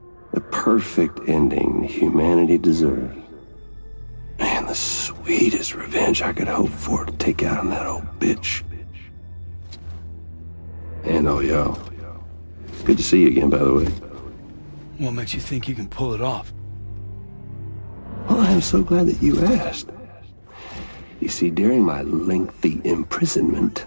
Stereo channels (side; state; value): both; inverted; correlation -1.00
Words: The perfect ending humanity deserves. Man, the sweetest revenge I could hope for to take out on that old bitch. And all y'all. Good to see you again, by the way. What makes you think you can pull it off? Well, I'm so glad that you asked. You see, during my lengthy imprisonment,